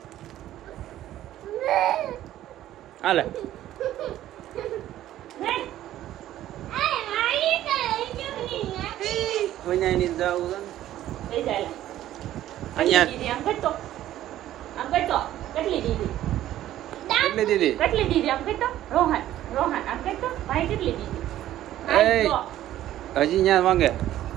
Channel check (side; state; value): left; quieter; 13.2 dB